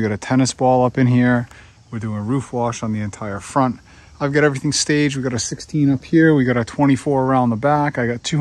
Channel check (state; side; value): identical; both; correlation 1.00